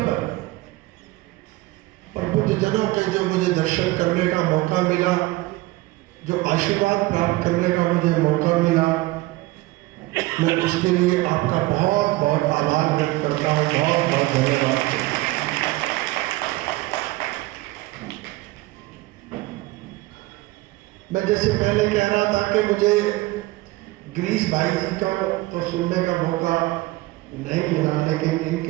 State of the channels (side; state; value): left; quieter; 19.4 dB